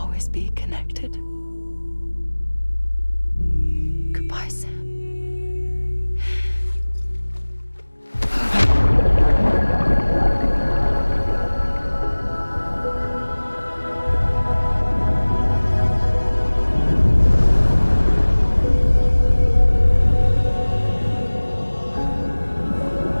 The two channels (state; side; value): inverted; both; correlation -1.00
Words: be connected. Goodbye, Sam.